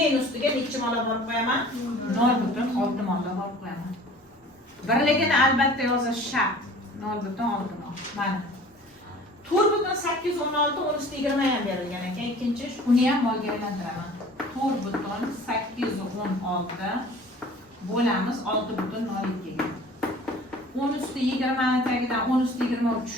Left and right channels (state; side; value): normal; both; correlation 0.46